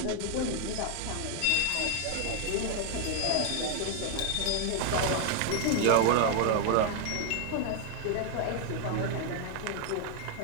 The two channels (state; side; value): different; both; correlation 0.00